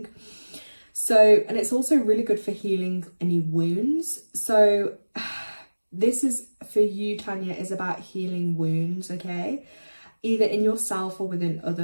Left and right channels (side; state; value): both; inverted; correlation -1.00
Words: So, and it's also really good for healing any wounds. So this is for you, Tanya, is about healing wounds, okay? Either in yourself or within